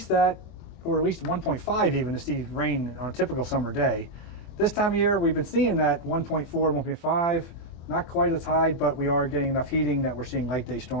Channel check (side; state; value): right; late; 24 ms